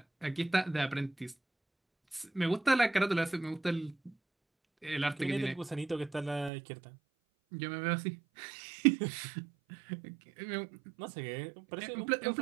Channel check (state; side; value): drops out; left; at 6.5 s